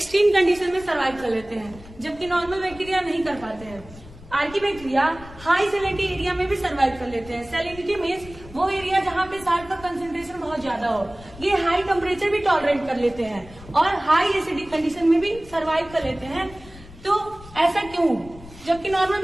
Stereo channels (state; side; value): noise; left; rumble, 19 dB below the sound